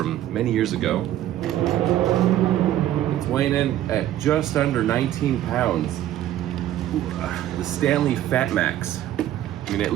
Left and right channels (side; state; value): left; quieter; 12.7 dB